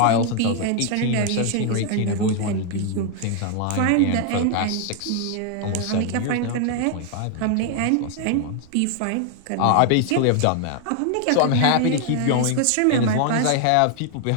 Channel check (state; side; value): different; both; correlation 0.00